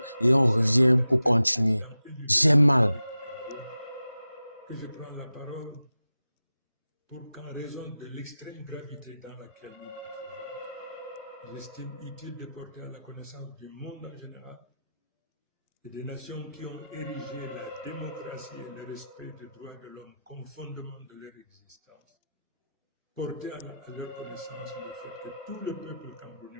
et on revient pour continuer. J'ai mal. Que je prends la parole pour qu'en raison de l'extrême gravité dans laquelle nous nous trouvons, j'estime utile de porter à la connaissance du monde en général et des nations qui ont érigé la démocratie et le respect des droits de l'homme comme fondement de leur existence. Porter à leur connaissance le fait que tout le peuple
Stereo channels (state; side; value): inverted; both; correlation -0.92